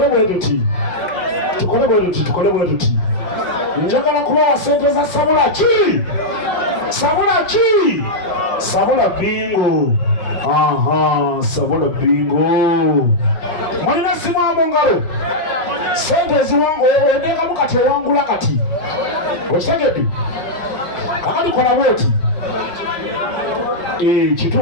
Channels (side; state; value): right; late; 5.6 ms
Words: tuti. Njagala kubawa ssente za Sabula ki? Sabula Bingo. Aha, Sabula Bingo. Mulina simu mu ngalo. Ssente eziwangu ondengamu kati ewangula kati. Okitegedde? Kakali kola bwoti.